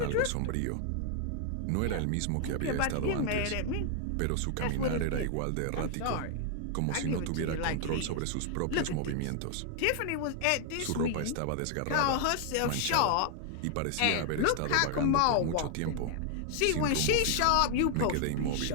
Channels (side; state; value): both; different; correlation 0.00